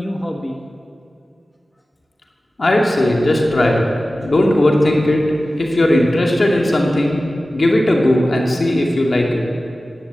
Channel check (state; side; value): normal; both; correlation 0.95